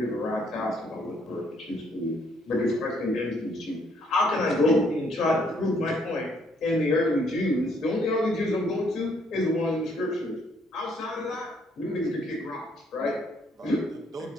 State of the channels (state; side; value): normal; both; correlation 0.67